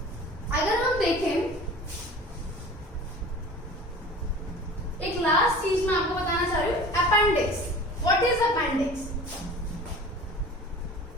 अगर हम देखें एक लास्ट चीज मैं आपको बताना चाह रही हूँ, appendix. What is appendix?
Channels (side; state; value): both; normal; correlation 0.41